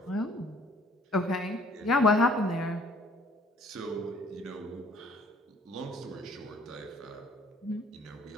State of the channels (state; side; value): normal; both; correlation 0.57